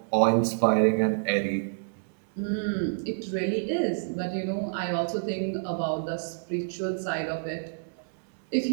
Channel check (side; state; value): left; silent; digital silence